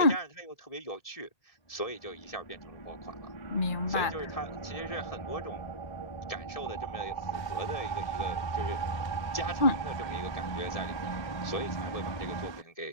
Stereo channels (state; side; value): late; right; 1.7 ms